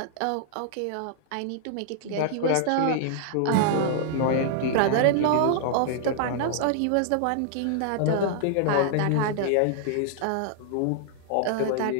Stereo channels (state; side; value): different; both; correlation -0.01